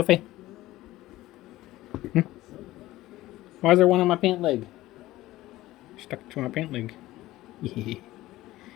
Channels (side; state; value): right; quieter; 16.7 dB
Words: Why is there one on my pant leg? Stuck to my pant leg.